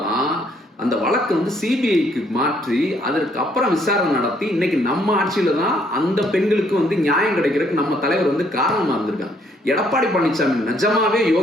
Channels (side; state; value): both; normal; correlation 0.67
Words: அந்த வழக்கு சிபிஐக்கு மாற்றி அதற்கு அப்புறம் விசாரணை நடத்தி இன்னைக்கு நம்ம ஆட்சியில தான் அந்த பெண்களுக்கு நியாயம் கிடைக்கிறதுக்கு நம்ம தலைவர் காரணமா இருந்திருக்காங்க. எடப்பாடி பழனிசாமி நிஜமாவே